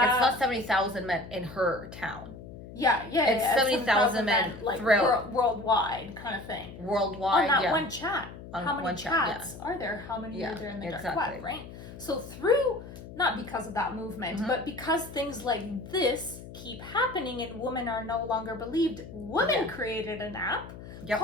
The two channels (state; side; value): noise; left; hum, 14 dB below the sound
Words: it's not 70,000 men in her town. It's 70,000 men like throughout worldwide kind of thing. worldwide. On that one chat. On How many one chat, chats are there? How many are there in the dark exactly. web, right? So through, not because of that movement, but because things like this keep happening and women are no longer believed, women created an app